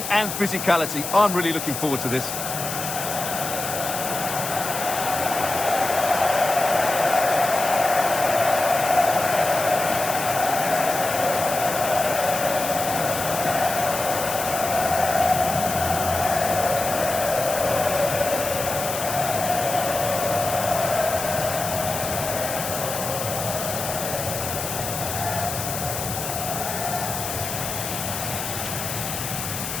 and physicality. I'm really looking forward to this.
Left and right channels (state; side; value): noise; left; hiss, 5 dB below the sound